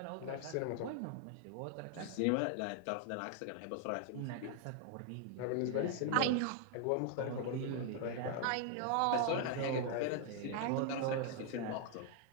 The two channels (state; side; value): different; both; correlation 0.00